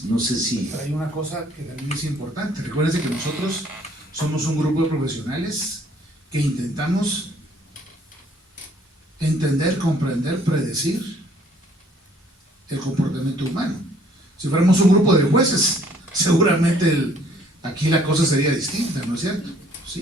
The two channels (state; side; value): normal; both; correlation 0.61